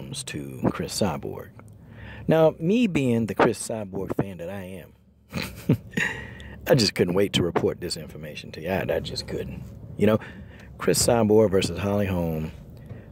to Cris Cyborg. Now, me being the Cris Cyborg fan that I am, I just couldn't wait to report this information to you. I just couldn't. You know, Cris Cyborg versus Holm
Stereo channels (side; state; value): both; identical; correlation 1.00